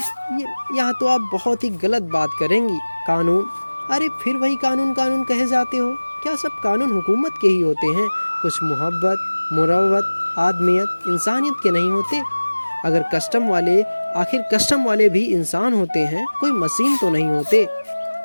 यहाँ तो आप बहुत ही गलत बात करेंगी। कानून, अरे फिर वही कानून कानून कहे जाते हो। क्या सब कानून हुकूमत के ही होते हैं? कुछ मोहब्बत, मुरव्वत, आदमियत, इंसानियत के नहीं होते? अगर कस्टम वाले, आखिर कस्टम वाले भी इंसान होते हैं, कोई मशीन तो नहीं होते।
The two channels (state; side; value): inverted; both; correlation -1.00